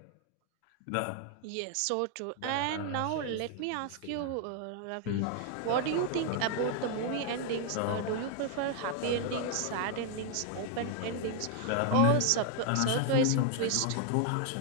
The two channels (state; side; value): different; both; correlation 0.00